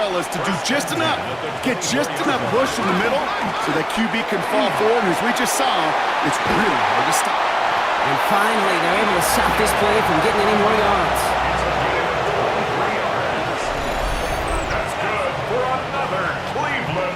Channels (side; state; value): both; identical; correlation 1.00